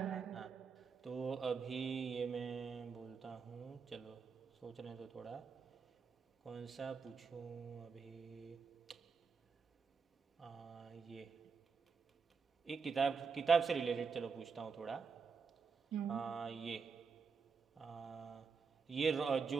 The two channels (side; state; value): left; quieter; 5.4 dB